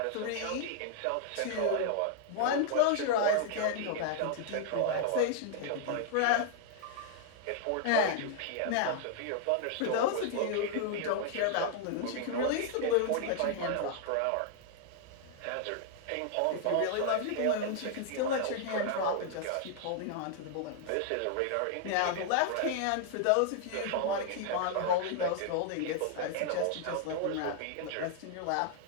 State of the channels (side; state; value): both; different; correlation 0.00